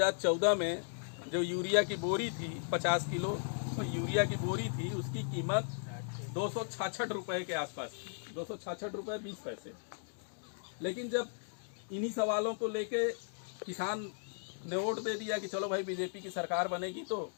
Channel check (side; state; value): right; silent; digital silence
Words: में जो यूरिया की बोरी थी 50 किलो तो यूरिया की बोरी थी, उसकी कीमत 266 रुपये के आसपास थी, 266 रुपये 20 पैसे। लेकिन जब इन्हीं सवालों को लेके किसान ने वोट दे दिया कि चलो भाई बीजेपी की सरकार बनेगी तो